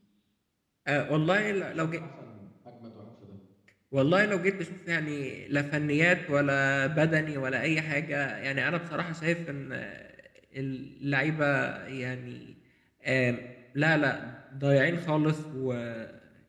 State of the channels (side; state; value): both; identical; correlation 1.00